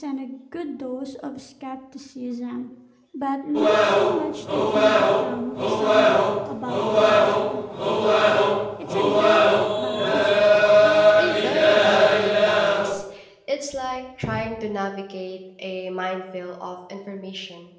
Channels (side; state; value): both; identical; correlation 1.00